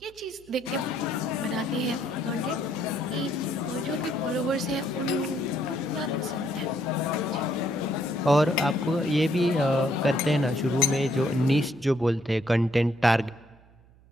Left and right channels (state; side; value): noise; right; hum, 27 dB below the sound